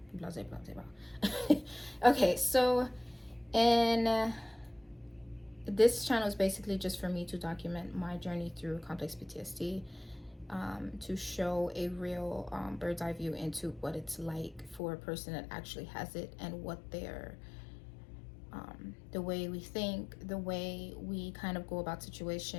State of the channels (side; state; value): right; drops out; at 14.8 s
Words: blah blah blah blah. Okay, so in this channel is basically just for me to document my journey through complex PTSD, to show a real bird's eye view into what it's like for a person that actually has it, and what their the way we think, the way we kind of go about